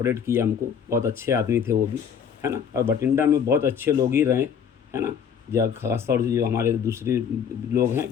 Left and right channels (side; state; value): right; quieter; 7.5 dB